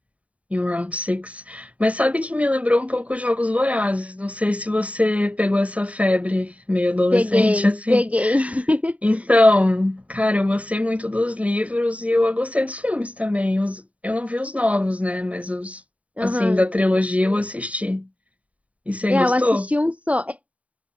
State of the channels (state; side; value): late; left; 0.067 ms